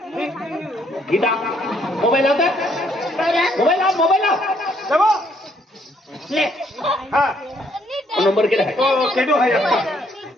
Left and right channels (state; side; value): normal; both; correlation 0.69